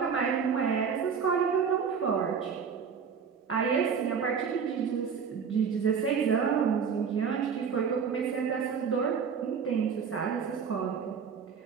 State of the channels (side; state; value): left; quieter; 6.5 dB